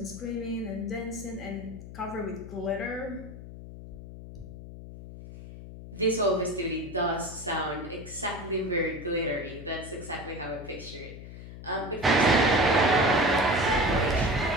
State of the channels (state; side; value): noise; left; hum, 13 dB below the sound